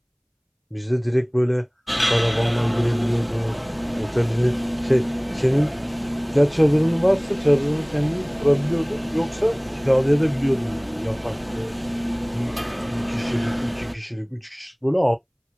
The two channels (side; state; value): both; identical; correlation 1.00